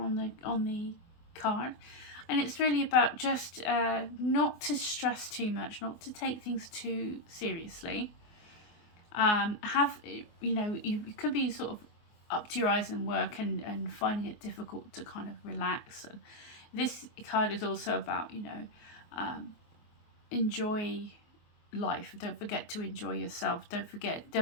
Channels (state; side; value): late; right; 24 ms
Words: the card, and it's really about just not to stress too much, not to take things too seriously. You know, you could be sort of up to your eyes in work and finding it difficult to kind of relax. And this card is also about, you know, enjoy life. Don't forget to enjoy yourself. Don't